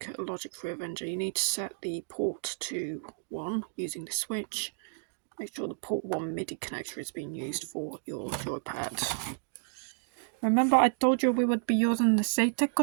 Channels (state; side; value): silent; left; digital silence